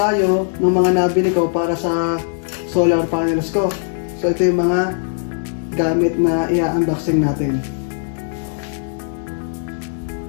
ng mga nabili ko para sa solar panels ko. So ito yung mga gamit na i-unboxing natin.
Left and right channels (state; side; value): silent; right; digital silence